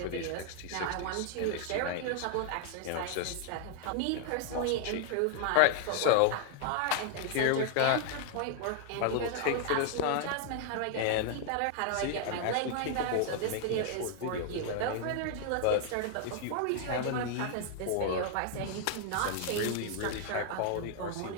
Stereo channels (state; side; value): different; both; correlation 0.00